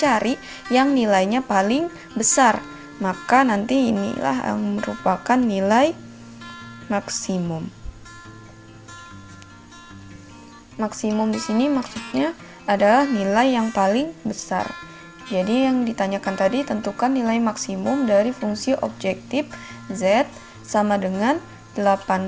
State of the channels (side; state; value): both; identical; correlation 1.00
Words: cari yang nilainya paling besar. Maka nanti inilah yang merupakan nilai maksimum. Maksimum di sini maksudnya adalah nilai yang paling besar. Jadi yang ditanyakan tadi, tentukan nilai maksimum dari fungsi objektif z sama dengan